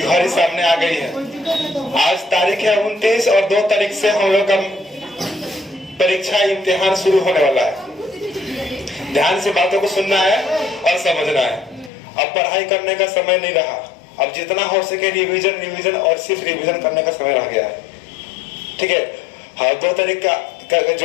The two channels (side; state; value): right; drops out; at 11.9 s